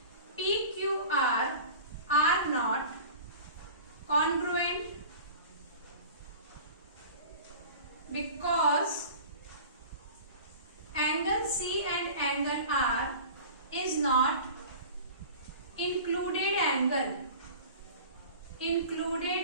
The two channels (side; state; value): both; inverted; correlation -0.39